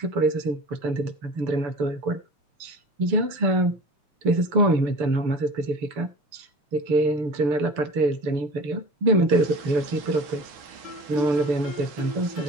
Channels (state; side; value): late; left; 6.9 ms